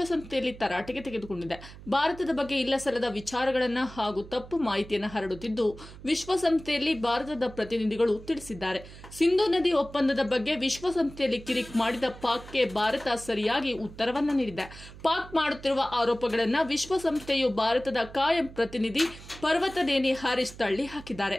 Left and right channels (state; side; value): noise; right; hum, 17 dB below the sound